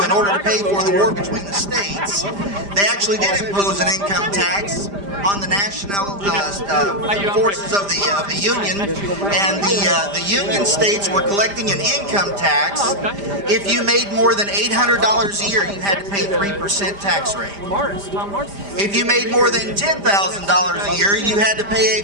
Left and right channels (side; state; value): left; late; 5.0 ms